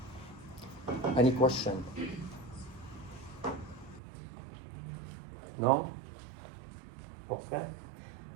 Any question? No? Okay.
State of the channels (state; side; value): drops out; left; at 4.0 s